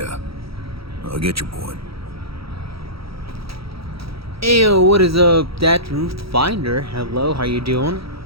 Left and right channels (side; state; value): left; late; 0.76 ms